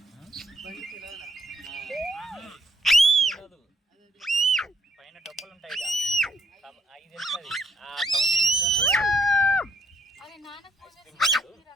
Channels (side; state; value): both; normal; correlation 0.71